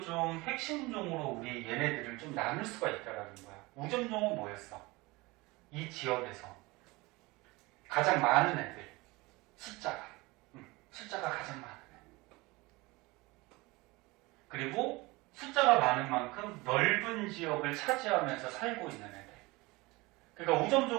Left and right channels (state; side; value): quieter; left; 22.9 dB